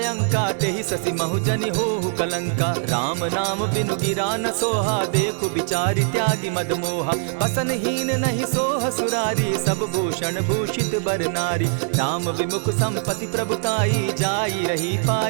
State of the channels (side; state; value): left; silent; digital silence